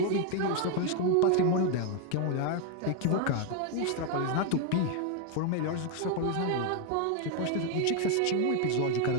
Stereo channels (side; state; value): both; different; correlation 0.01